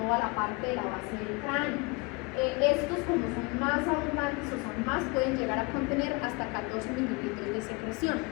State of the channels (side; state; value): right; quieter; 27.8 dB